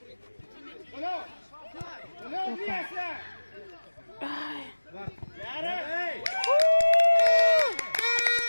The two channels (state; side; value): inverted; both; correlation -1.00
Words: Алло! Алло, Леся! Яра!